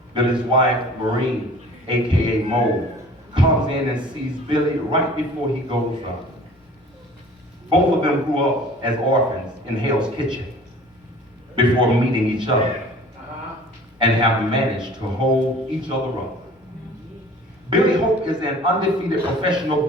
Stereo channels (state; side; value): normal; both; correlation 0.47